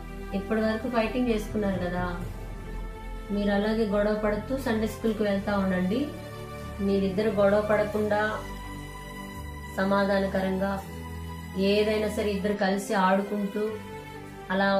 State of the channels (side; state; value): both; identical; correlation 1.00